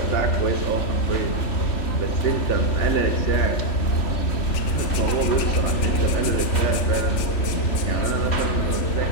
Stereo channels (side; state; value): right; late; 3.4 ms